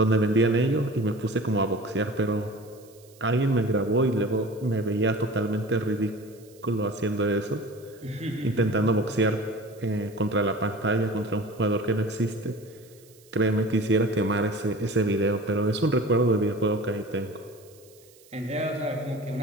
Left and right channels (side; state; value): right; noise; hiss, 27 dB below the sound